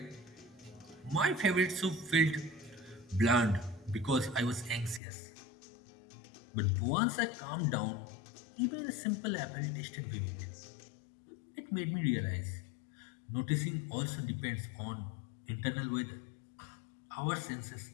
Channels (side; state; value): right; drops out; at 5.0 s